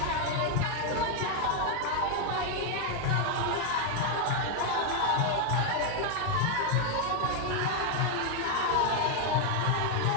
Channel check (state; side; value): different; both; correlation 0.01